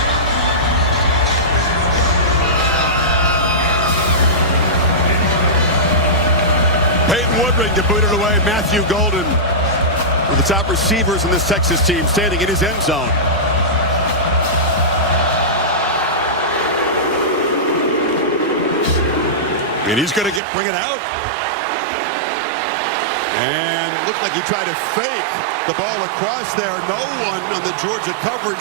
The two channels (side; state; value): left; drops out; at 20.4 s